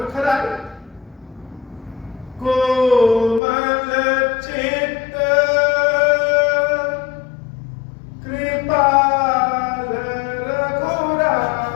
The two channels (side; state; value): right; drops out; at 3.4 s